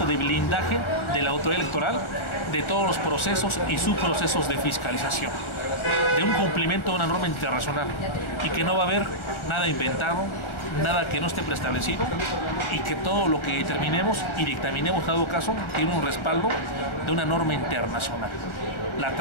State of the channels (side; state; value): right; late; 1.4 ms